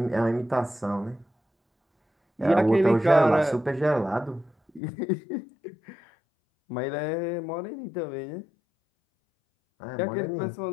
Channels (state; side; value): drops out; right; at 4.8 s